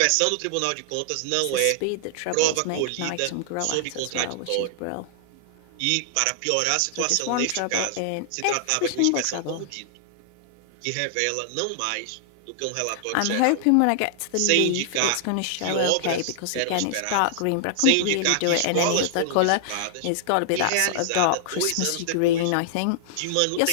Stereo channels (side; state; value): both; different; correlation -0.01